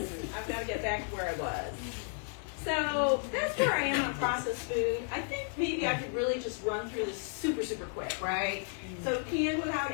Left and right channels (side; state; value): right; silent; 56 dB below the other